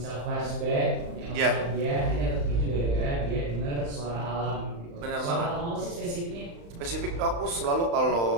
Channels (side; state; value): left; late; 35 ms